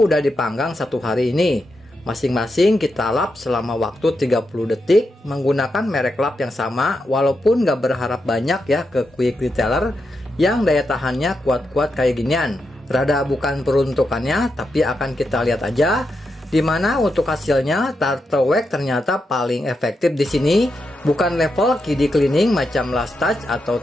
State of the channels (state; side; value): normal; both; correlation 0.85